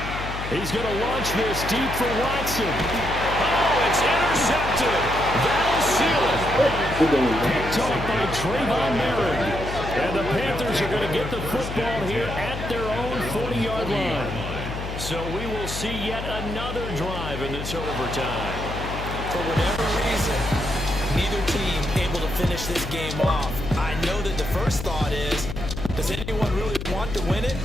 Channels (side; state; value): left; noise; hum, 7 dB below the sound